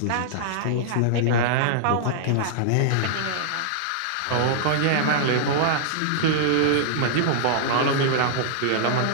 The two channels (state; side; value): different; both; correlation -0.02